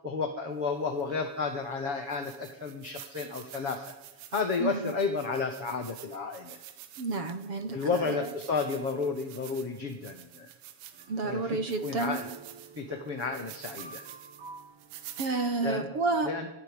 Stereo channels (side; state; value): left; late; 7.2 ms